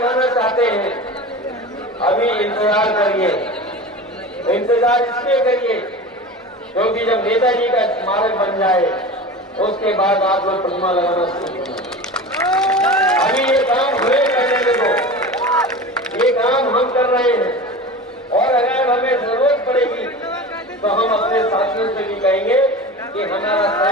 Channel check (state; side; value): normal; both; correlation 0.32